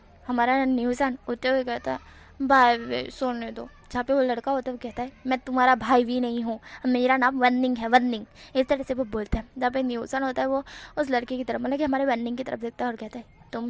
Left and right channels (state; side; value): identical; both; correlation 1.00